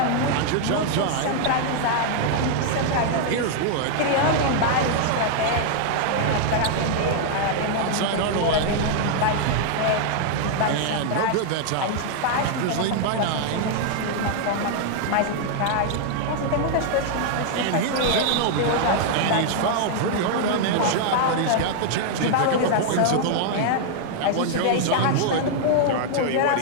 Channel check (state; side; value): different; both; correlation 0.00